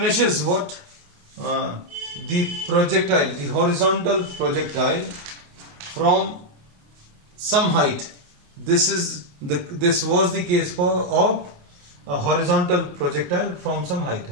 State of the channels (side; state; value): left; late; 28 ms